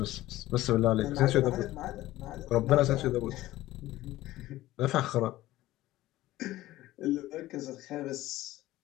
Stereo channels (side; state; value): right; quieter; 16.3 dB